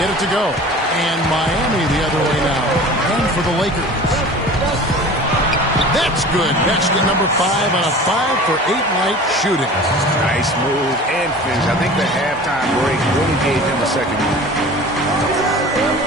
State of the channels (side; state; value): both; normal; correlation 0.40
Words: it to go. And Miami the other way now. And for the Lakers. That's good. Basket number 5 on a 5-for-8 night shooting. Nice move and finish. I think the halftime break really gave him a second.